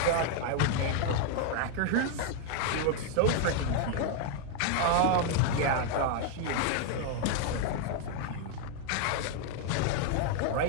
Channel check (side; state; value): both; different; correlation 0.01